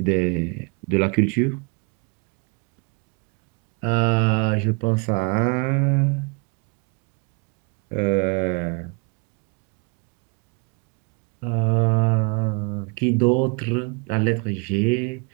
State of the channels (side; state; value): left; quieter; 32.6 dB